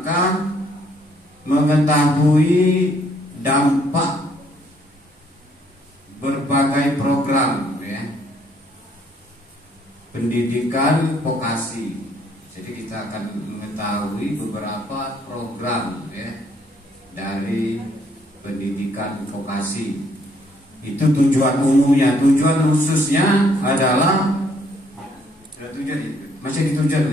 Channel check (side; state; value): both; normal; correlation 0.66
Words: mengetahui dampak berbagai program ya, pendidikan vokasi. Jadi kita akan mengetahui beberapa program ya, dari pendidikan vokasi. Itu tujuan umumnya. Tujuan khususnya adalah